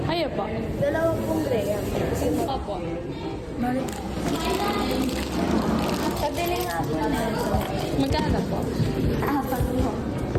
Ayo po. Dalawang pong graham. Opo. Pabili nga po na. Magkano po? Apat mo.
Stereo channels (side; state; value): both; identical; correlation 1.00